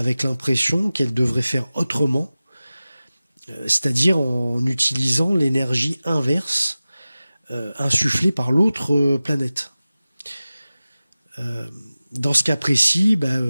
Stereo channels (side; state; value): both; inverted; correlation -0.96